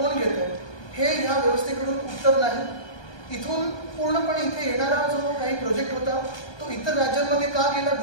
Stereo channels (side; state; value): right; late; 1.2 ms